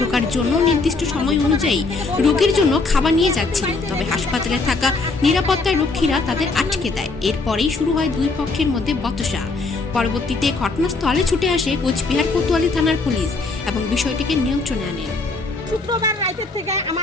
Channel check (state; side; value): quieter; right; 3.7 dB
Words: ঢোকার জন্য নির্দিষ্ট সময় অনুযায়ী রোগীর জন্য খাবার নিয়ে যাচ্ছিল, তবে হাসপাতালে থাকা নিরাপত্তা রক্ষীরা তাদের আটকে দেয়। এরপরেই শুরু হয় দুই পক্ষের মধ্যে বচসা। পরবর্তীতে ঘটনাস্থলে ছুটে আসে কোচবিহার কোতোয়ালি থানার পুলিশ এবং বিষয়টিকে নিয়ন্ত্রণে আনেন। শুক্রবার রাতের থেকে